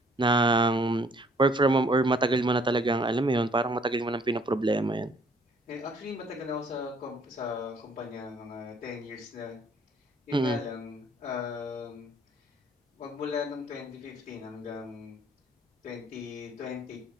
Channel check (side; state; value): both; normal; correlation 0.60